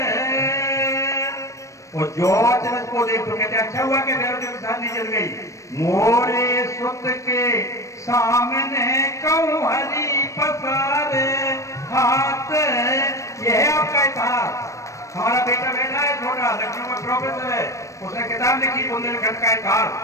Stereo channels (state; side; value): late; right; 0.15 ms